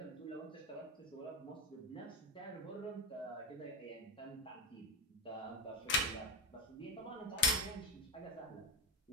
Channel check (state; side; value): normal; both; correlation 0.12